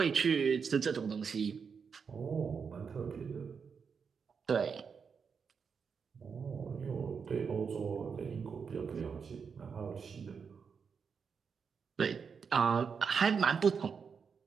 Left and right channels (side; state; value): left; quieter; 6.1 dB